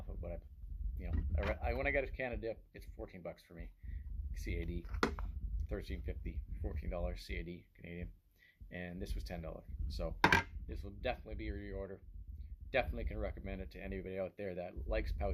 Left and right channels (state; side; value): identical; both; correlation 1.00